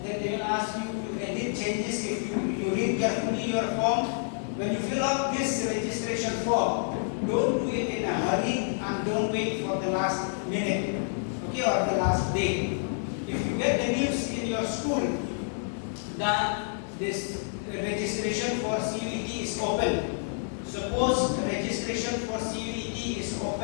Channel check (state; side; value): silent; right; digital silence